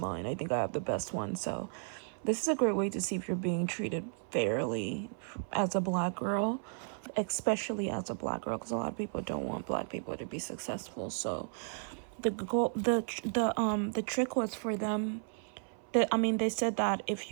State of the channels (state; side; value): silent; left; 55 dB below the other